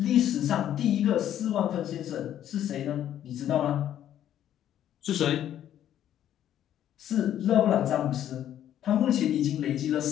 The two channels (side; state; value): right; quieter; 11.1 dB